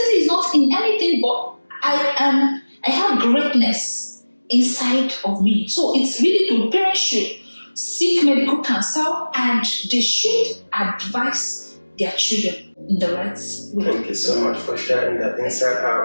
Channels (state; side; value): inverted; both; correlation -1.00